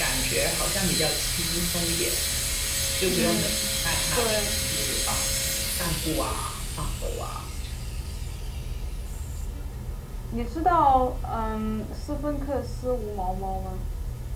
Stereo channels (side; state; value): both; identical; correlation 1.00